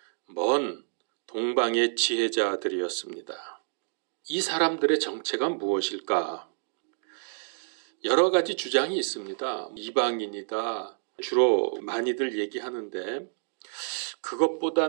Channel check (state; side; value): silent; left; digital silence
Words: 먼 동방의 지혜자들이었습니다. 이 사람들의 정체가 무엇일까? 여러 가지 주장이 있습니다. 이방인이다. 주로 많이들 얘기하는데